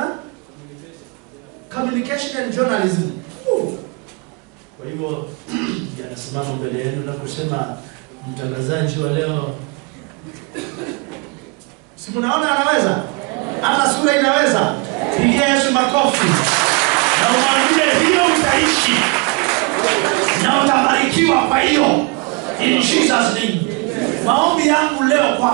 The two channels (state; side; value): quieter; left; 30.4 dB